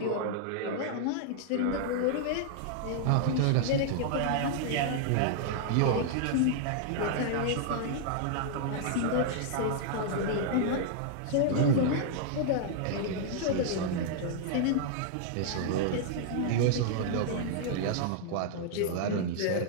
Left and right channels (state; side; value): different; both; correlation -0.01